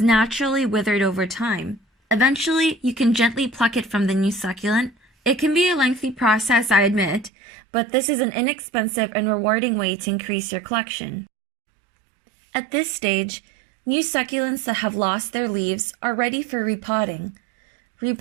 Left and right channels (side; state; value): left; drops out; at 7.3 s